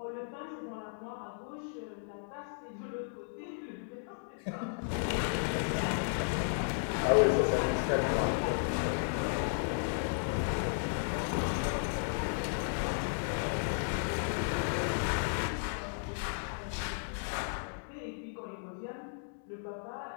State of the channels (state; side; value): silent; right; digital silence